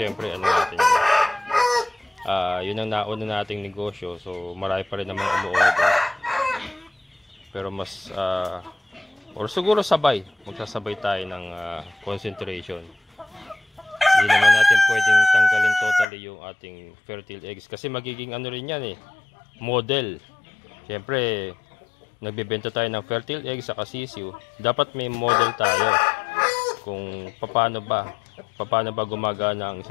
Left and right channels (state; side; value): drops out; right; at 16.1 s